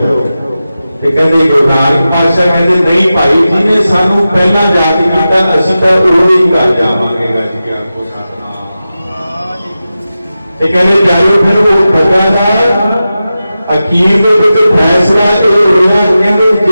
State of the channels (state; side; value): inverted; both; correlation -0.93